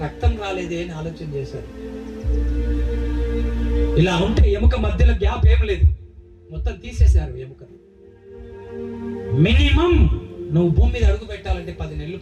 రక్తం రాలేదే అని ఆలోచన చేశారు. ఇలా ఉంటే ఎముక మధ్యలో గ్యాప్ ఏం లేదు, మొత్తం తీసేశారు ఎముక. మినిమం నువ్వు భూమి మీద అడుగు పెట్టాలంటే 10 నెలలు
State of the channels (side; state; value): both; identical; correlation 1.00